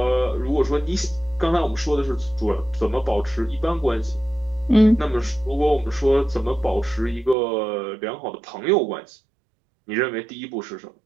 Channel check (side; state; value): left; drops out; at 7.4 s